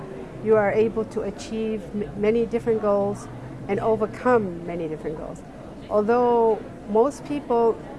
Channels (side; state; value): both; identical; correlation 1.00